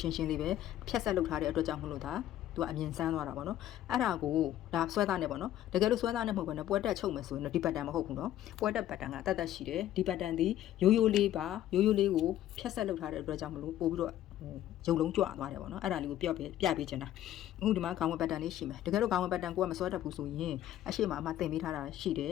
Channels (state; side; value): quieter; right; 12.5 dB